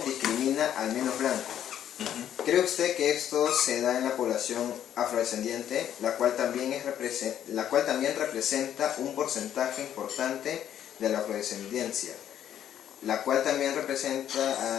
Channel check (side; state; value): right; quieter; 10.3 dB